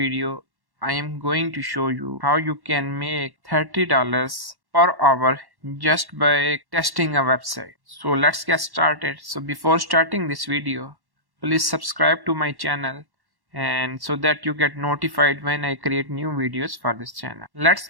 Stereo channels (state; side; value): late; left; 1.1 ms